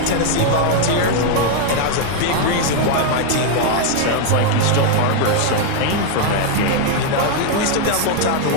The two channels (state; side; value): different; both; correlation 0.00